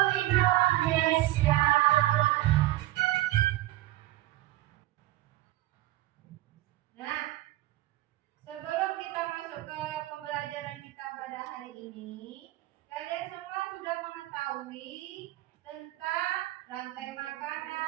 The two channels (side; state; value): left; quieter; 16.4 dB